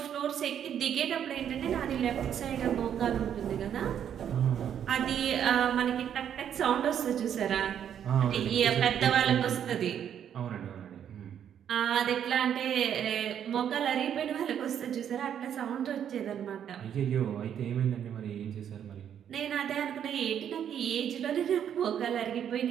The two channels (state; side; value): quieter; left; 9.2 dB